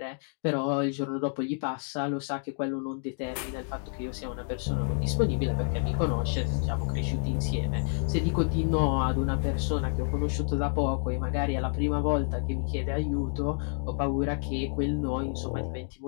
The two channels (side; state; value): right; silent; 58 dB below the other